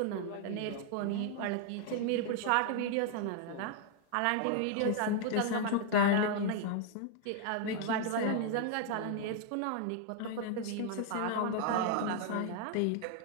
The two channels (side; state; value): both; different; correlation 0.00